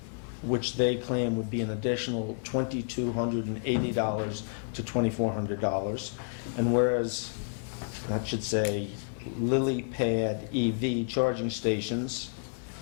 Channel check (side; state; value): right; silent; digital silence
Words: which they claim would be an additional $2,280 to $2,400. And whereas that should say Lily Pad EV charging stations.